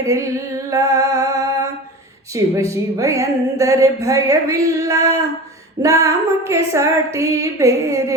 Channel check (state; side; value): normal; both; correlation 0.33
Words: ಶಿವ ಶಿವ ಎಂದರೆ ಭಯವಿಲ್ಲ, ನಾಮಕ್ಕೆ ಸಾಟಿ